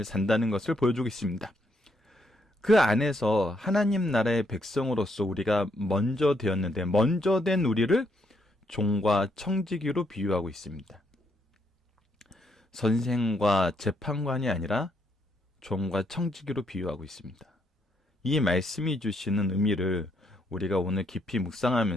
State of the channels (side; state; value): both; normal; correlation 0.74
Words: 산다는 것을 보여주고 있습니다. 그 안에서 하나님 나라의 백성으로서 우리가 먼저 되었는데 먼저 된 우리를 종과 청지기로 비유하고 있습니다. 선생과 재판관이 아니라 종과 청지기로 비유하고 있습니다. 이 말씀이 주시는 의미를 우리가 오늘 깊이